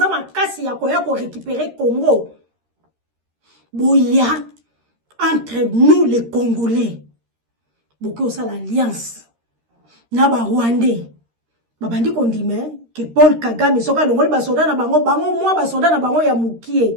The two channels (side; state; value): left; late; 13 ms